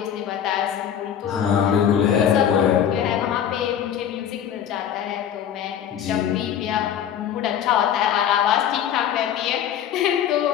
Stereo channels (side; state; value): right; quieter; 9.4 dB